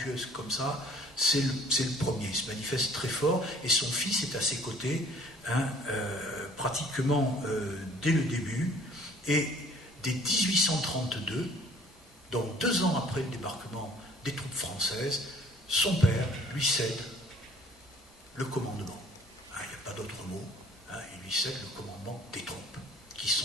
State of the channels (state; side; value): normal; both; correlation 0.55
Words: comme ça, c'est le premier. Il se manifeste très fort et son fils est à ses côtés pratiquement dès le début. Et dès 1832, donc 2 ans après le débarquement des troupes françaises, son père lui cède le commandement. Il n'y a pas d'autre mot. Il lui cède le commandement des troupes qui